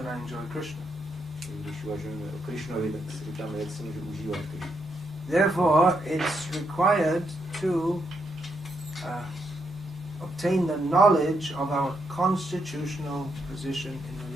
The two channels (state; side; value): normal; both; correlation 0.79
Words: I enjoy Krishna? Když uvažujeme o Krishnovi, tak si říkáme, jak se může užívat Krishna. Therefore, it's required to obtain the knowledge of our constitutional position in